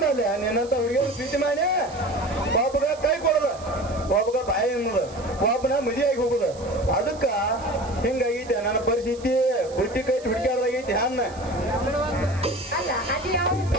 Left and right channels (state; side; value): noise; right; hiss, 21 dB below the sound